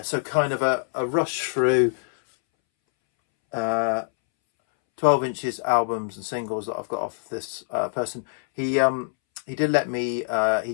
so kind of a rush through 12 inches albums and singles that I've got off this person. He did let me,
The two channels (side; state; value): right; silent; 62 dB below the other